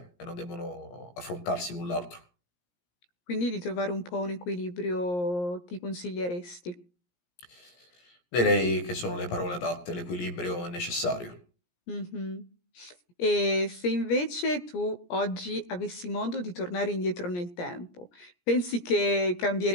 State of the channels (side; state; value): right; late; 17 ms